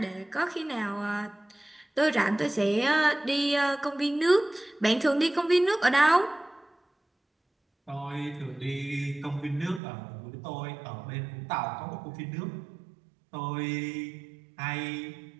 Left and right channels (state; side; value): drops out; left; at 9.8 s